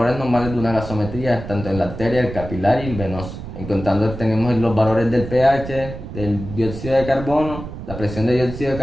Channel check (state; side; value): noise; right; rumble, 10 dB below the sound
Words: normales de una gasometría, tanto en la arteria, el capilar y el venoso. En contando tenemos los valores del pH, del dióxido de carbono, la presión de dióxido de